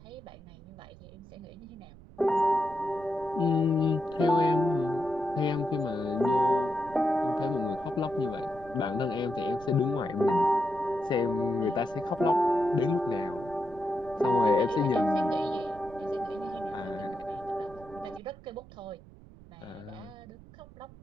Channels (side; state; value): right; noise; rumble, 20 dB below the sound